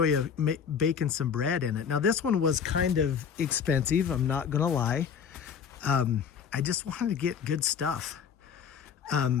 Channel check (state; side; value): quieter; right; 7.1 dB